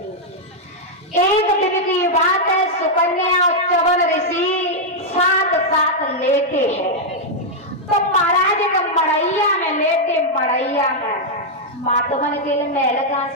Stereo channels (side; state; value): both; normal; correlation -0.03